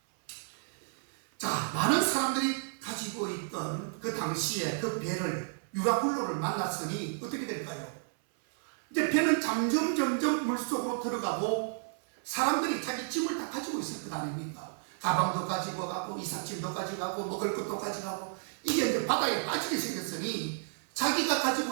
자, 많은 사람들이 가지고 있던 그 당시에 그 배를 유라굴로를 만났으니 어떻게 될까요? 이제 배는 점점 물속으로 들어가고 사람들이 자기 짐을 다 가지고 있을 것 아닙니까? 가방도 가지고 가고 이삿짐도 가져가고 먹을 것도 가져가고 이게 이제 바다에 빠지게 생겼으니 자기가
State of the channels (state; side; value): silent; left; 56 dB below the other